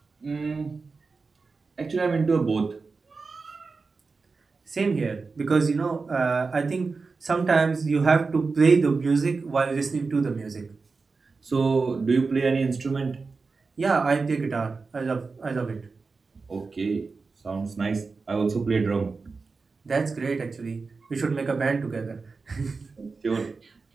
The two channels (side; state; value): left; quieter; 4.3 dB